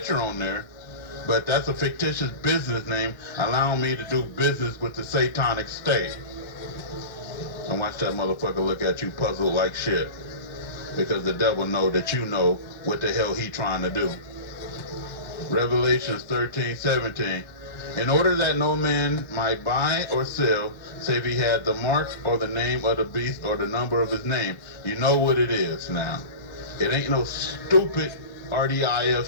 on there, but that's a fictitious business name allowing me to do business with the satanic state. And watch that motherfucker look at you puzzled like shit. Because the devil know that you know what the hell he trying to do. Revelations 13:17. In order that no man might buy or sell, save he had the mark or the name of the beast or the number of his name. You know what it is now. It ain't no stupid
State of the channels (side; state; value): right; late; 1.1 ms